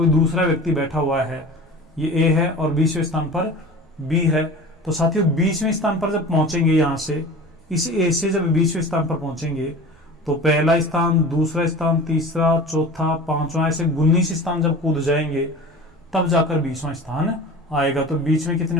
दूसरा व्यक्ति बैठा हुआ है, ये A है और 20वें स्थान पर B है। तो साथियों 20वें स्थान पर जब पहुंचेंगे, यहां से इस A से जब 20वें स्थान पर पहुंचेंगे तो पहला स्थान, दूसरा स्थान, तीसरा, चौथा, 5वां, ऐसे 19 स्थान जब कूद जाएंगे तब जाकर 20वां स्थान आएगा। तो बीच में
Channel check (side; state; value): both; normal; correlation 0.37